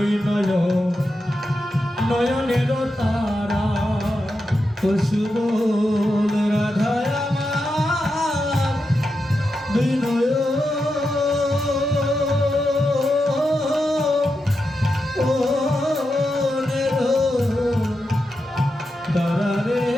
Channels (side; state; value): both; normal; correlation 0.87